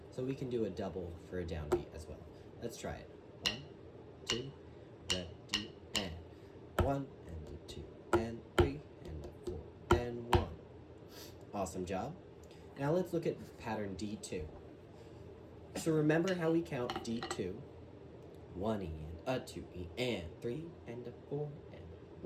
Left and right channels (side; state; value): both; identical; correlation 1.00